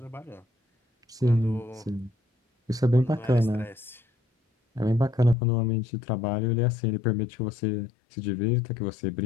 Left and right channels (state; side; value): drops out; right; at 5.4 s